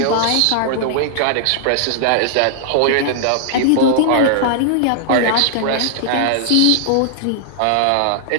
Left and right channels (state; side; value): different; both; correlation -0.01